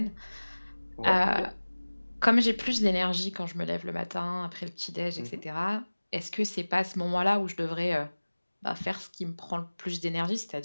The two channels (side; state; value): both; inverted; correlation -1.00